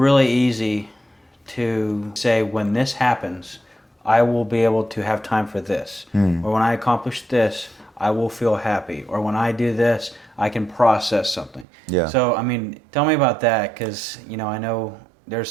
easy to say, when this happens, I will be able to have time for this, or when I accomplish this, I will feel happy, or when I do this, I can process something. Yeah. So I mean, tell me about that, because I know there's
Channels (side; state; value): left; drops out; at 11.7 s